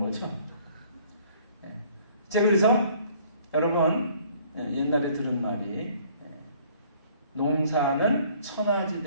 제가 그래서 여러분 옛날에 들은 말이, 농사는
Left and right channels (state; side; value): inverted; both; correlation -0.58